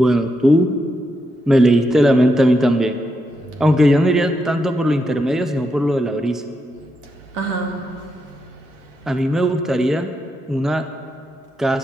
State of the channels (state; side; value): normal; both; correlation 0.83